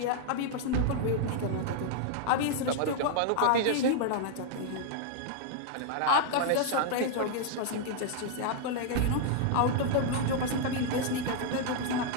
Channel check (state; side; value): different; both; correlation 0.00